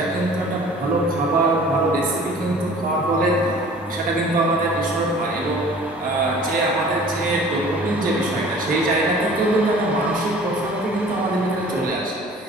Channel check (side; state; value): both; normal; correlation 0.48